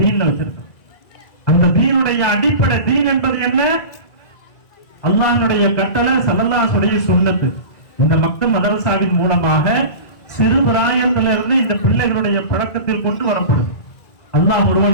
வச்சிருக்கிறான். அந்த தீனுடைய அடிப்படை, தீன் என்பது என்ன? அல்லாஹ்வுடைய கட்டளை, ஸல்லல்லாஹு சுன்னத்து. இந்த மக்கள் மதரசாவின் மூலமாக சிறு பிராயத்திலிருந்து இந்த பிள்ளைகளுடைய பழக்கத்தில் கொண்டு வரப்படுது. அல்லாஹ் ஒருவன்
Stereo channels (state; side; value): late; right; 1.9 ms